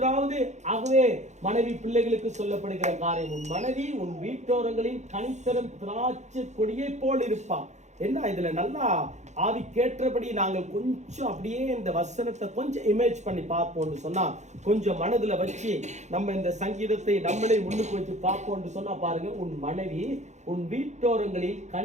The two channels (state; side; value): late; left; 0.34 ms